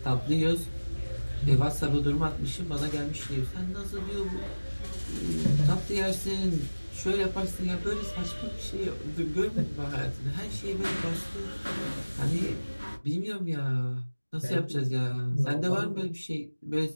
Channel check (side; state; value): both; inverted; correlation -1.00